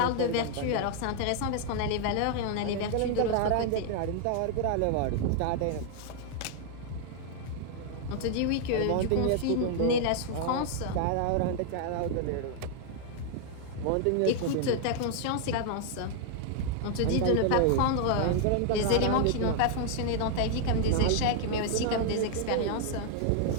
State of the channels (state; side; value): different; both; correlation 0.00